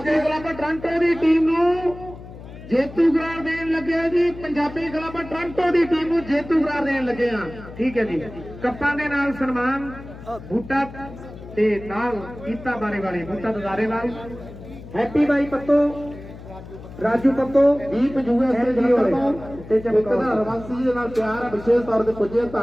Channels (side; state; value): left; noise; hum, 15 dB below the sound